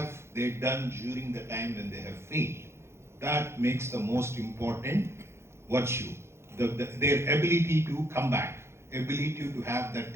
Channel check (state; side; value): late; left; 0.13 ms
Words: they done during the time when they have failed. That makes the most important virtue. Their ability to come back, ability to have that